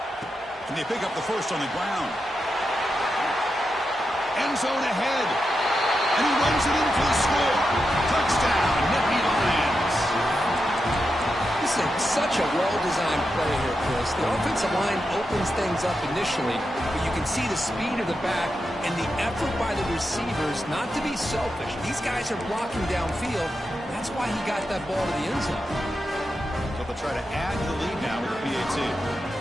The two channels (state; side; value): normal; both; correlation 0.88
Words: And they pick up the first on the ground. End zone ahead. And he runs it in for the score. Touchdown, Nittany Lions. This is such a well-designed play here, Chris. The offensive line opens things up initially, but you can see the speed of the back and the effort by the receivers not to be selfish. These guys are blocking downfield. That's why he got that ball to the end zone. So they'll try to add to the lead now with the PAT.